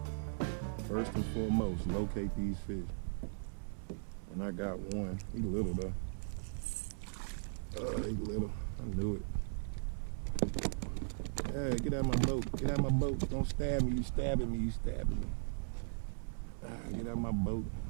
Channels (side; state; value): left; silent; 52 dB below the other